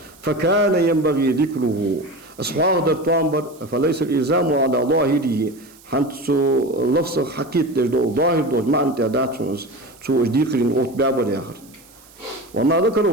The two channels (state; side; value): noise; right; hiss, 25 dB below the sound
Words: فكان ينبغي ذكره أصحاب در توامبر فليس الإلزام على ظاهره حنت لفظ حقيقة دو ظاهر دو ما أنت داتونس شو ذكرين أوت بابر آخر وما